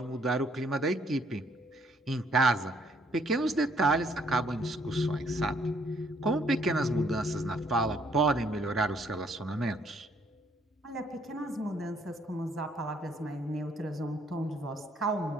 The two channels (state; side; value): normal; both; correlation 0.66